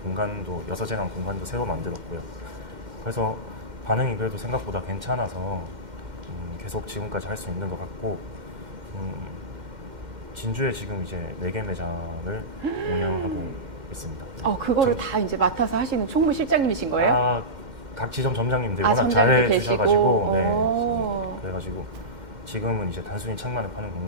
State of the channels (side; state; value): left; late; 2.1 ms